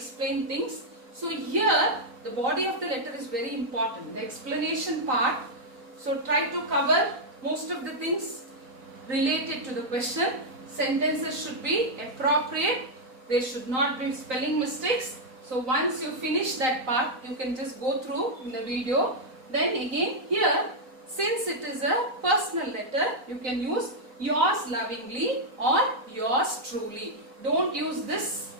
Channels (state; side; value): late; left; 3.9 ms